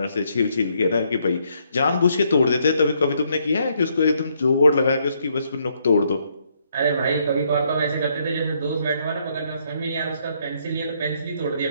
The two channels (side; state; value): both; inverted; correlation -0.72